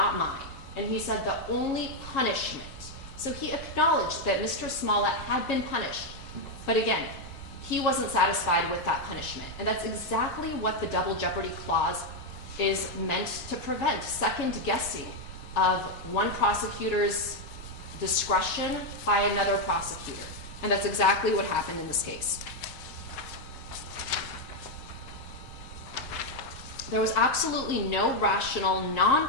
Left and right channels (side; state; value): both; normal; correlation 0.03